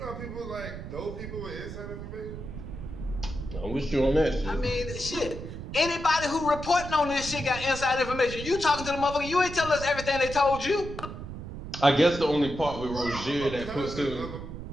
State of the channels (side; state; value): right; noise; rumble, 9 dB below the sound